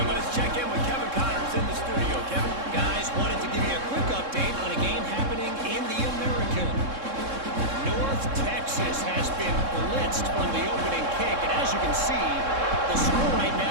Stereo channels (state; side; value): late; left; 3.7 ms